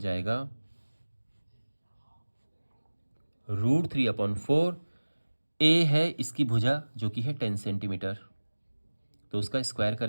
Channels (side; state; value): both; inverted; correlation -1.00